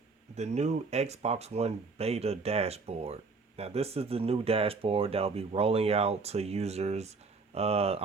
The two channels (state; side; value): quieter; left; 4.3 dB